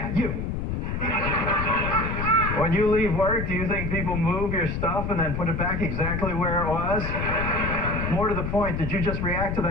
you. When you leave work, do you think people move your stuff and then put it back exactly where it was? More to the point, did you just react to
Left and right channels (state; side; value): noise; left; rumble, 2 dB below the sound